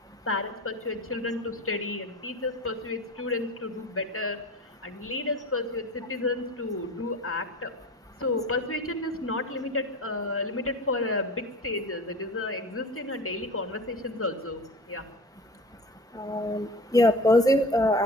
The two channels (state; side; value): normal; both; correlation 0.36